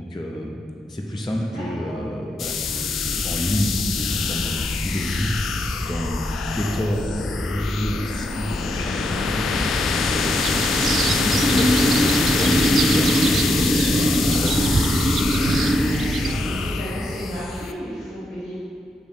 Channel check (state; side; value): normal; both; correlation 0.80